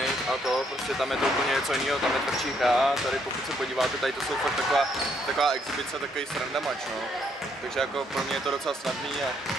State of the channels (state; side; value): normal; both; correlation 0.72